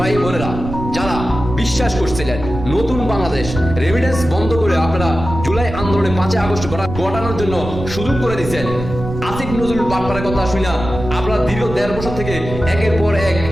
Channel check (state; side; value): noise; right; rumble, 8 dB below the sound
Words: বোনেরা যারা বিশ্বাস করছিলেন নতুন বাংলাদেশ রেমিটেন্স বন্ধ করে আপনারা জুলাই আন্দোলনে 5 আগস্ট ঘটানোর জন্য সুযোগ করে দিচ্ছেন, আসিফ নজরুল বাটপারের কথা শুনা আপনারা দীর্ঘ 1.5 বছর থেকে একের পর এক